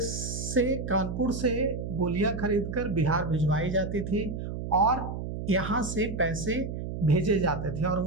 से, कानपुर से गोलियां खरीदकर बिहार भिजवाई जाती थी और यहाँ से पैसे भेजे जाते थे। और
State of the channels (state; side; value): noise; right; hum, 6 dB below the sound